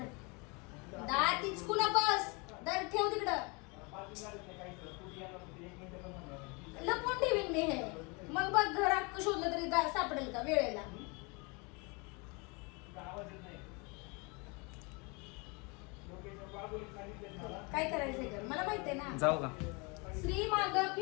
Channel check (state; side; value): quieter; right; 29.8 dB